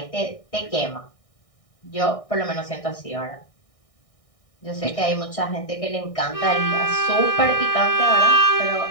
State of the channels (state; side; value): late; right; 1.6 ms